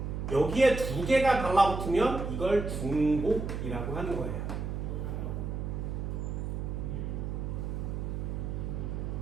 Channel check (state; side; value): noise; right; hum, 3 dB below the sound